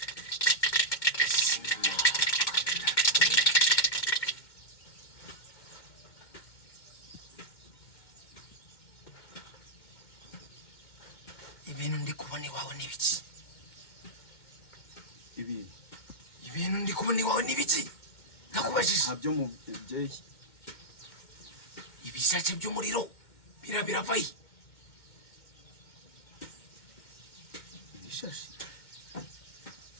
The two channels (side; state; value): right; late; 2.1 ms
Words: ibintu ndi kubona iwawe n'ibiki ibintu ndi kubona iwawe n'ibiki nakubajije ntabyo mubyeyi ibishace by'umuriro biravaye ibishashi